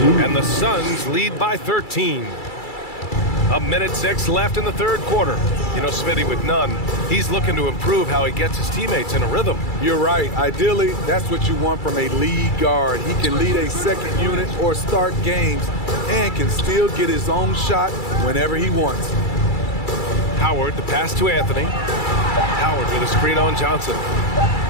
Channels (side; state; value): right; late; 2.3 ms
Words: And the Suns lead by 13. A minute 6 left in the third quarter. You know, Smitty, with Nunn, he's looking to improve how he gets his teammates in a rhythm. You're right. Ideally, that's what you want from a lead guard. He can lead a second unit or start games and can still get his own shot whenever he wants. Howard, the pass to Anthony. Howard with a screen on Johnson.